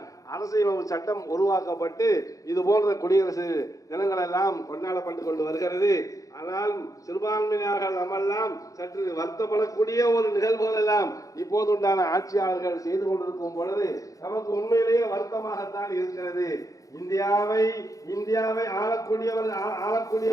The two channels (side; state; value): right; late; 0.16 ms